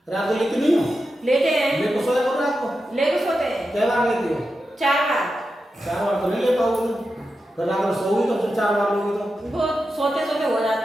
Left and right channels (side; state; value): both; normal; correlation 0.90